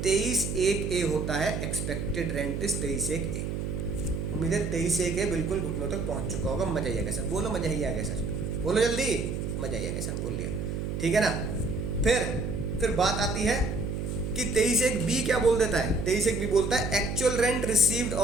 23(1)(a) होता है एक्सपेक्टेड रेंट इज 23(1)(a। उम्मीद है 23(1)(a) बिल्कुल घुटनों तक पहुंच चुका होगा। मजा ही आ गया सर, बोलो मजा ही आ गया सर, बोलो जल्दी, मजा ही आ गया सर, बोल लिया। ठीक है ना। फिर बात आती है कि 23(1)(b) क्या बोल देता है? 23(1)(b) बोलता है एक्चुअल रेंट रिसीव्ड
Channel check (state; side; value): noise; right; hum, 3 dB below the sound